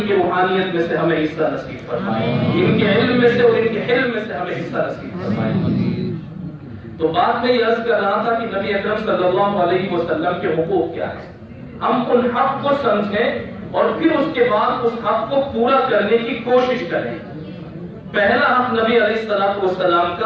کی روحانیت میں سے ہمیں حصہ نصیب فرمائے، ان کے علم میں سے اور ان کے حلم میں سے ہمیں حصہ نصیب فرمائے. تو بات میں یہ عرض کر رہا تھا کہ نبی اکرم صلی اللہ علیہ وسلم کے حقوق کیا ہیں. ہم ان حق کو سمجھیں اور پھر اس کے بعد اس حق کو پورا کرنے کی کوشش کریں. پہلا حق نبی علیہ السلام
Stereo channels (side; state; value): both; identical; correlation 1.00